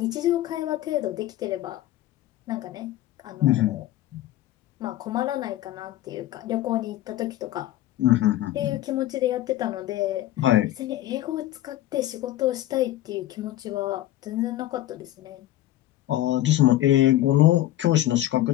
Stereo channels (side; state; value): right; quieter; 14.4 dB